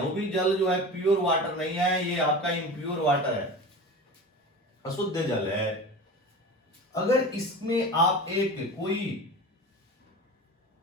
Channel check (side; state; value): both; normal; correlation 0.32